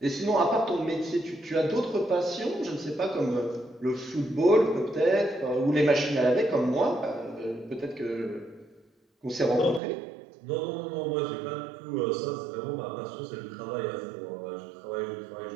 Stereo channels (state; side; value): drops out; left; at 9.8 s